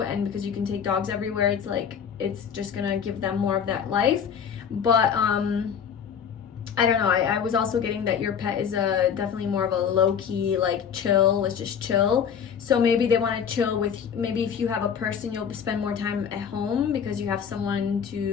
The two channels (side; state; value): right; quieter; 7.5 dB